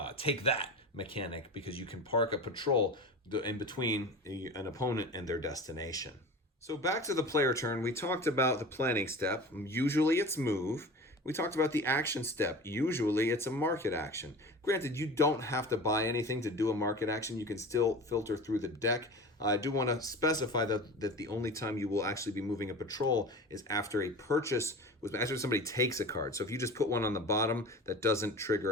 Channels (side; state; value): both; normal; correlation 0.34